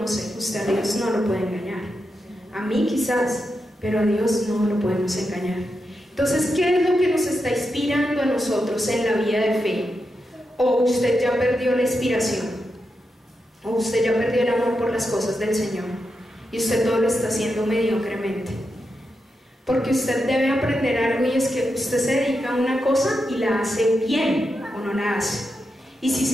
Usted a Dios no lo puede engañar. A mí quizás, pero a Dios no lo podemos engañar. Entonces, ¿qué es lo que nos está inspirando a nosotros en la vida de fe? ¿O usted ya perdió la inspiración? ¿O usted ya perdió el amor por las cosas del Señor? Y usted todo lo está haciendo mediocremente. Porque usted debe aprender algo, y es que usted se dedica a una cosa y la hace bien o no la hace. Y si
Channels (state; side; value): normal; both; correlation 0.87